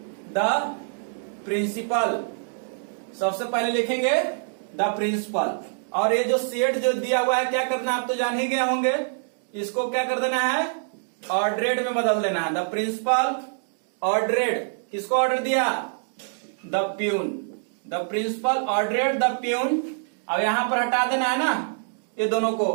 द प्रिंसिपल, सबसे पहले लिखेंगे द प्रिंसिपल। और ये जो सेड जो दिया हुआ है क्या करना है, आप तो जान ही गए होंगे, इसको क्या कर देना है, ऑर्डरेड में बदल देना है। द प्रिंसिपल ऑर्डरेड, किसको ऑर्डर दिया, the peon, the principal ordered the peon. अब यहां पर हटा देना है ना, ये दोनों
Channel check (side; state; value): left; silent; digital silence